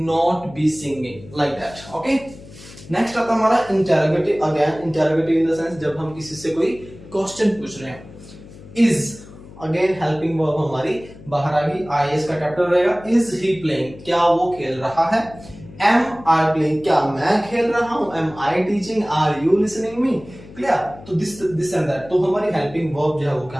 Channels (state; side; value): noise; left; hum, 18 dB below the sound